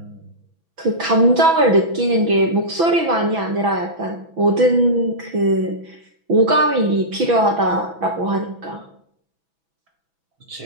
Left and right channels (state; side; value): late; left; 6.1 ms